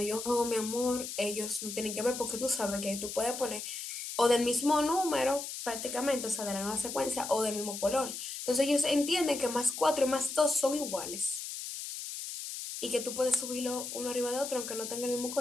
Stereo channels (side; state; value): left; noise; hiss, 7 dB below the sound